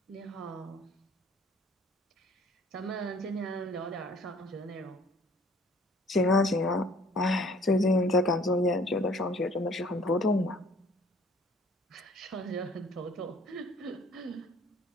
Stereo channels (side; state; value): both; normal; correlation 0.56